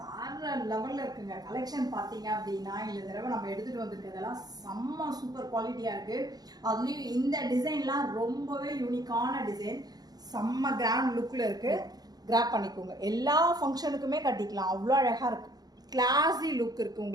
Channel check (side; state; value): left; late; 0.19 ms